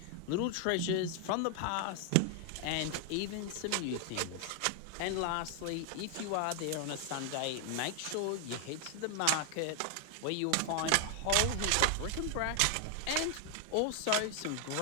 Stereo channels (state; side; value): different; both; correlation 0.00